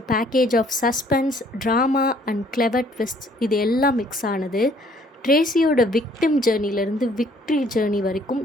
package of suspense, drama and clever twist இது எல்லாம் மிக்ஸ் ஆனது. ட்ரேசியோட விக்டிம் ஜேர்னிலேருந்து விக்ட்ரி ஜேர்னி வரைக்கும்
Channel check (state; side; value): normal; both; correlation 0.61